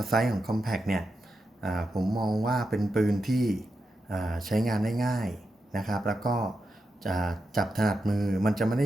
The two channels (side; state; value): both; normal; correlation 0.87